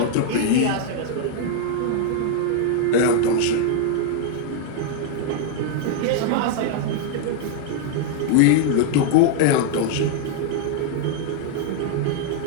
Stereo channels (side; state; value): both; different; correlation 0.00